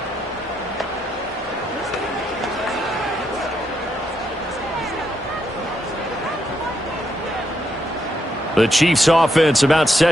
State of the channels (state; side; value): normal; both; correlation 0.78